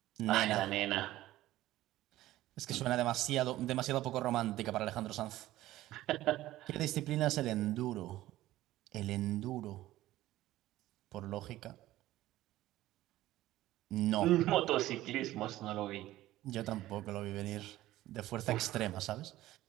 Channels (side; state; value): left; quieter; 15.5 dB